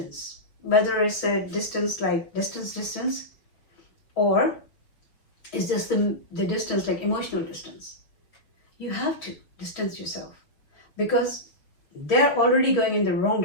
whether it's a distance like distance, or it's just the distance like emotional distance. You have to distance yourself because they're already going in the wrong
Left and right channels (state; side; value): late; right; 6.4 ms